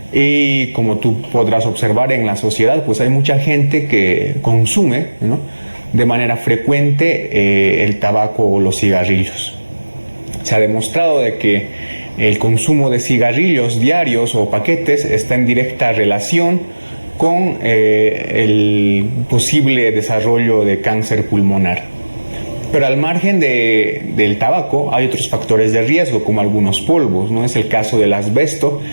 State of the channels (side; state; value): both; inverted; correlation -1.00